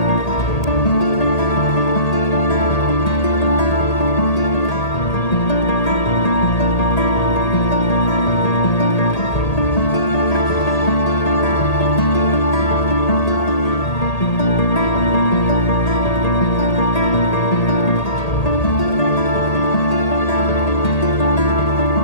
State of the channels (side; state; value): right; late; 1.8 ms